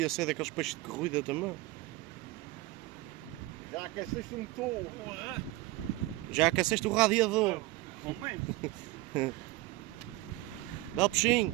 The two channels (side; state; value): left; quieter; 18.9 dB